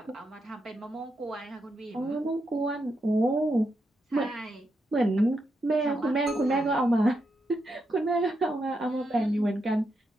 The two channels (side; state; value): both; normal; correlation 0.83